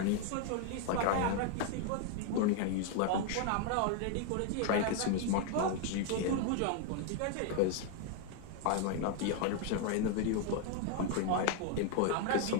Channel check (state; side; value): different; both; correlation 0.01